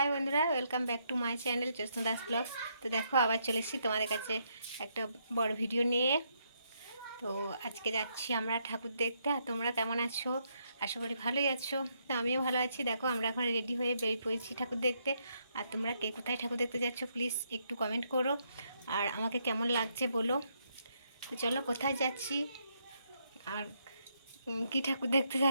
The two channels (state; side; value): inverted; both; correlation -0.76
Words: বন্ধুরা, welcome back to my channel Jyotsna Das vlogs. তো দেখো আবার চলে এসেছি তোমাদের কাছে একটা বড় ভিডিও নিয়ে। তো আজকে যাচ্ছি আমরা ঠাকুর দেখতে। আর তোমরা কেমন আছো? আশা করি ভালোই আছো। তো আমিও ভালো আছি। দেখো আমরা এখন রেডি হয়ে বেরিয়ে পড়েছি ঠাকুর দেখতে। আর তোমরা কে কোথায় ঠাকুর দেখতে যাচ্ছ প্লিজ একটু কমেন্ট করো, আর আমাকে কেমন লাগছে বলো। তো চলো কোথায় যাচ্ছি আর কী ঠাকুর দেখতে